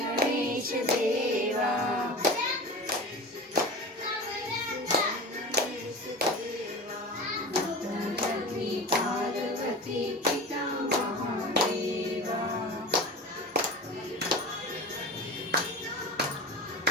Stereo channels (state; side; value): normal; both; correlation 0.32